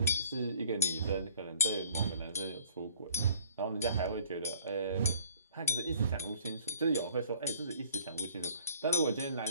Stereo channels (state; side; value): inverted; both; correlation -0.54